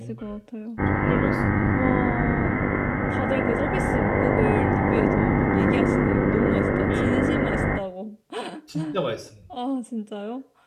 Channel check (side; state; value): both; identical; correlation 1.00